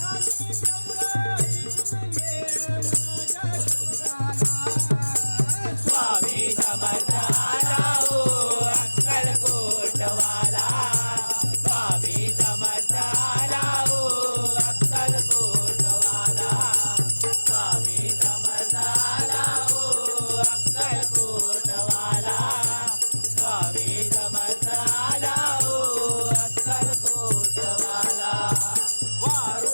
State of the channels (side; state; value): both; inverted; correlation -1.00